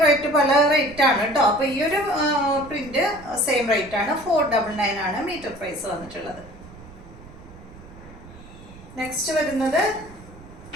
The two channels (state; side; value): noise; right; rumble, 19 dB below the sound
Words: റേറ്റ് പല റേറ്റ് ആണ് കേട്ടോ. അപ്പൊ ഈ ഒരു പ്രിന്റ് സെയിം റേറ്റ് ആണ്, 499 ആണ് മീറ്റർ പ്രൈസ് വന്നിട്ടുള്ളത്. നെക്സ്റ്റ് വരുന്നത്